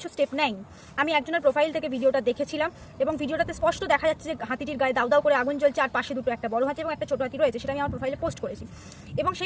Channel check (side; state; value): both; identical; correlation 1.00